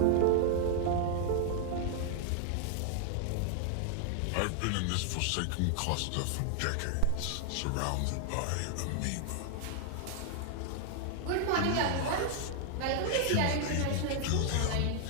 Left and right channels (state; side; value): different; both; correlation 0.00